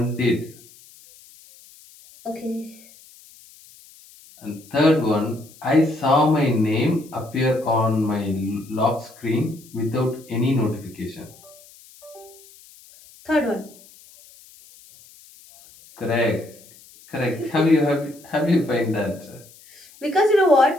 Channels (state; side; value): noise; left; hiss, 24 dB below the sound